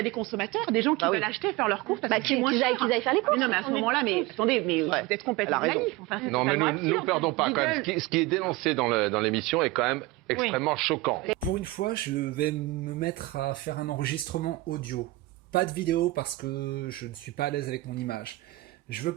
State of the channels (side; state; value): left; quieter; 19.2 dB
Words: a des consommateurs, des gens qui veulent acheter, faire leurs courses parce que c'est moins cher. Qu'ils aillent faire les courses. Non, mais à ce moment-là, attendez, vous êtes complètement naïf. Non, mais nous ne perdons pas quand même. Ce qui est dénoncé dans l'émission est quand même extrêmement choquant. Pour une fois, je vais me mettre à faire un enregistrement audio. Pas de vidéo parce que je ne suis pas à l'aise avec mon image. Je veux